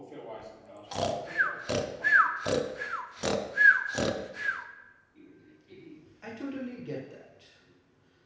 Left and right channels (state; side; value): identical; both; correlation 1.00